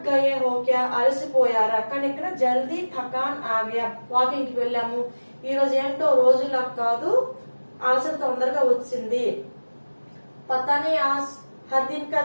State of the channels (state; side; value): inverted; both; correlation -1.00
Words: గయే హో క్యా అలసిపోయారా. కానీ ఇక్కడ జల్దీ థకాన్ ఆగయా. వాకింగ్ కి వెళ్ళాము, ఈ రోజు ఏంటో రోజులా కాదు, అలసట తొందరగా వచ్చింది. పతానే ఆజ్ హర్ దిన్ కా